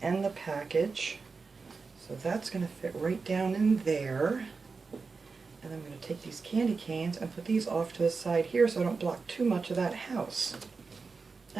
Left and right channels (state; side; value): quieter; left; 4.6 dB